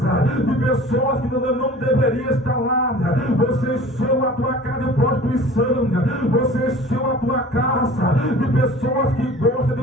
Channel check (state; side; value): normal; both; correlation 0.44